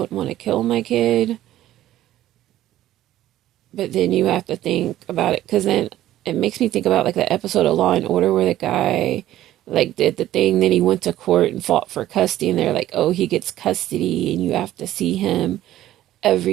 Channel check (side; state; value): left; quieter; 13.7 dB